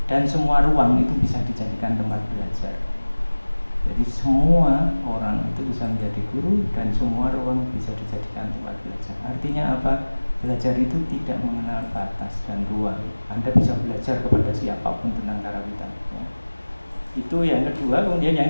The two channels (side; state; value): both; inverted; correlation -1.00